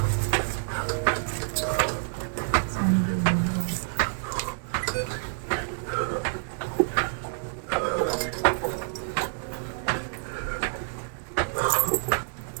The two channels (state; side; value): silent; left; 55 dB below the other